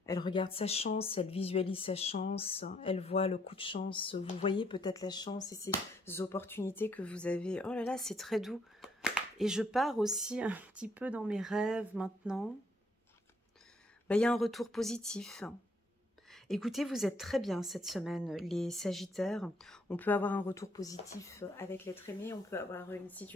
Elle regarde sa chance, elle visualise sa chance, elle voit le coup de chance. Vous voyez peut-être la chance et ces opportunités que vous avez. Oh là là, c'est très doux. Et je pars aussi un petit peu dans mes rêves maintenant. Ben, il y a un retour positif. Écoutez, vous êtes très bien cette semaine, les Sagittaires. On peut avoir un retour positif avec l'être aimé, on peut avoir une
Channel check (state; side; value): normal; both; correlation 0.69